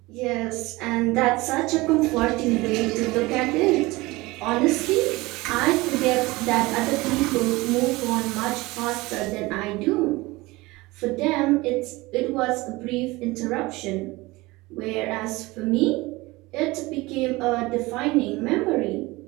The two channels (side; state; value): left; quieter; 21.5 dB